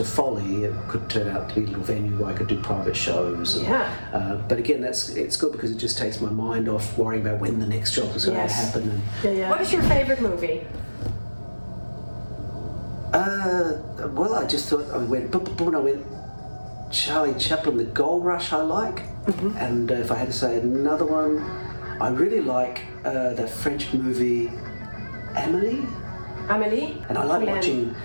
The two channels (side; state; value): both; inverted; correlation -1.00